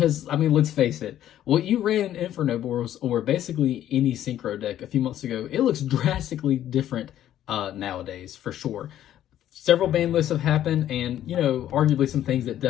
I mean, let's face it, what you ran in Infernoble or basically any synchro deck a few months ago, it looks drastically different nowadays, for sure. Several ban lists have happened, and, you know, arguably some things that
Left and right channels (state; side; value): quieter; right; 11.8 dB